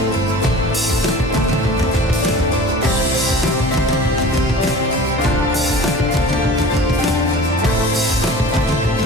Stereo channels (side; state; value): both; normal; correlation 0.40